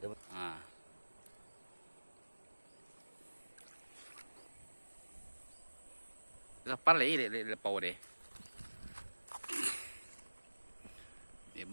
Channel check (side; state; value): both; inverted; correlation -1.00